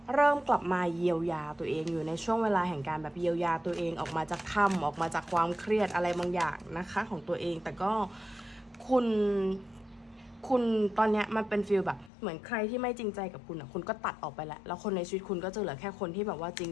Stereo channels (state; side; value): drops out; right; at 12.1 s